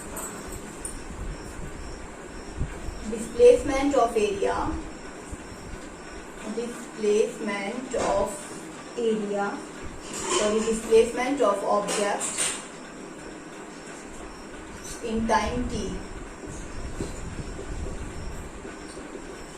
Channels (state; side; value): identical; both; correlation 1.00